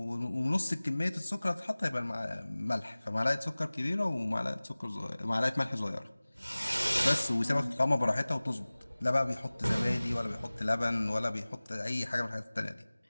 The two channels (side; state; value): both; inverted; correlation -0.99